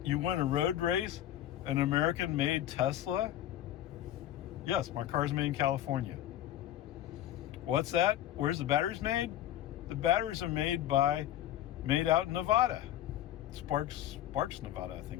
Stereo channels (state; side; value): quieter; right; 12.3 dB